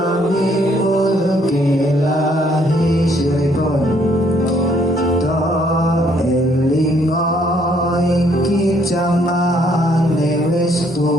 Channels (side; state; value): both; normal; correlation 0.67